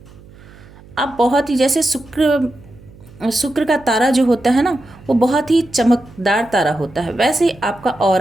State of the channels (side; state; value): right; noise; hum, 22 dB below the sound